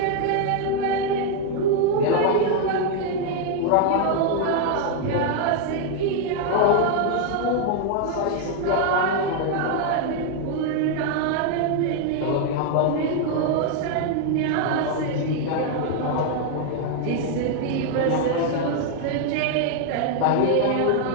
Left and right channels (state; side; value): different; both; correlation 0.00